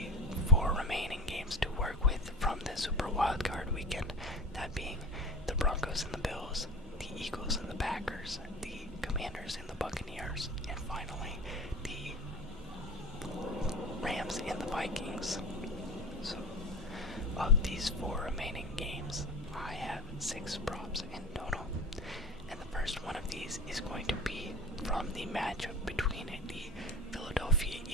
4 remaining games to work with from the Super Wildcard Weekend, that being the Broncos and the Bills, the Eagles and the Packers, the Commanders and the Buccaneers, and finally the Rams and the Vikings. So of these 4 remaining games, I have 6 props in total, and the first one of these is going to be from the matchup between the Philadelphia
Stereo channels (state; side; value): normal; both; correlation 0.34